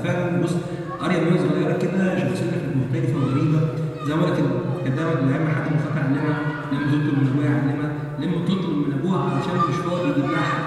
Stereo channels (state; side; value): identical; both; correlation 1.00